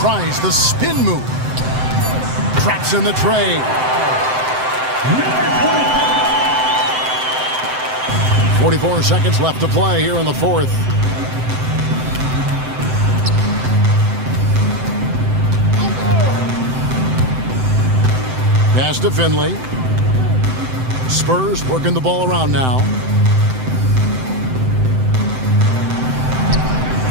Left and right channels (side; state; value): left; late; 7.8 ms